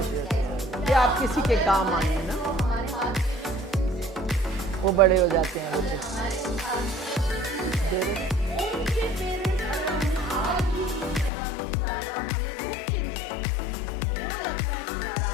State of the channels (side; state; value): right; drops out; at 11.3 s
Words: होती है कि आप किसी के काम आए ना, वो बड़े हो जाते हैं बच्चे।